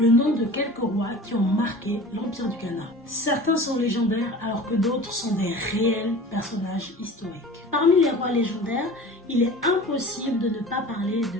nom de quelques rois qui ont marqué l'Empire du Ghana. Certains sont légendaires alors que d'autres sont des réels personnages historiques. Parmi les rois légendaires, il est impossible de ne pas parler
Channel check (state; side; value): normal; both; correlation 0.39